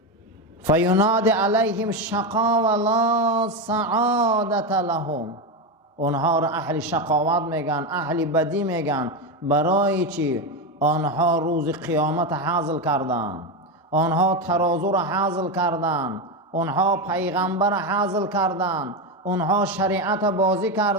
فیناد علیهم شقا و لا سعادت لهم. اونها را اهل شقاوت میگن، اهل بدی میگن. برای چی؟ آنها روز قیامت حاصل کردن، آنها ترازو را حاصل کردن، آنها پیغمبر را حاصل کردن، آنها شریعت بازی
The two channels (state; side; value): normal; both; correlation 0.13